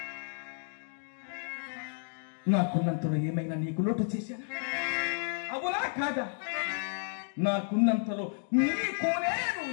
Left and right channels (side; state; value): right; silent; 57 dB below the other